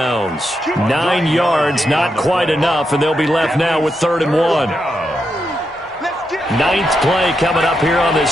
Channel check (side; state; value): both; normal; correlation 0.84